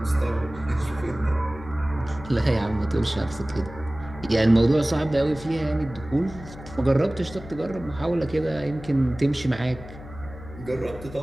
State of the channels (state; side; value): noise; left; hum, 15 dB below the sound